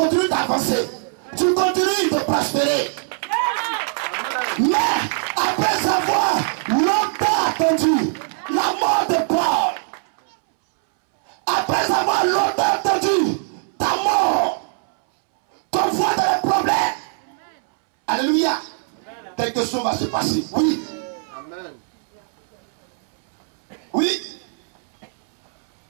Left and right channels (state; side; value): silent; left; 65 dB below the other